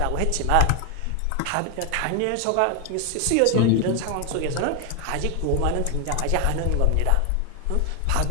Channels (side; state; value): both; different; correlation 0.01